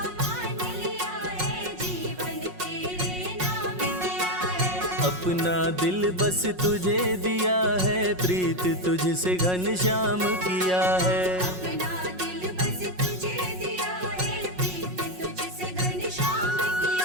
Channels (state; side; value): late; left; 5.5 ms